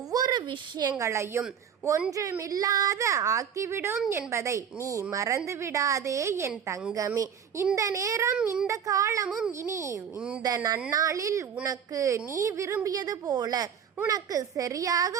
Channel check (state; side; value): quieter; left; 7.9 dB